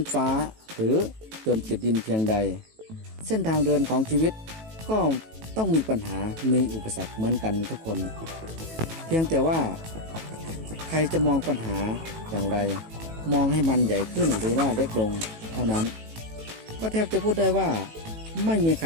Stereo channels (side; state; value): left; late; 18 ms